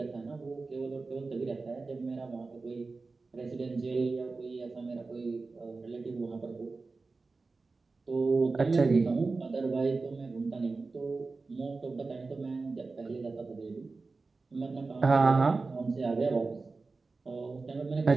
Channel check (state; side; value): quieter; left; 3.9 dB